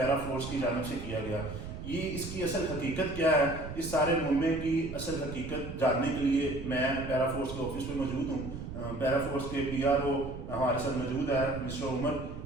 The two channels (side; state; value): right; noise; rumble, 9 dB below the sound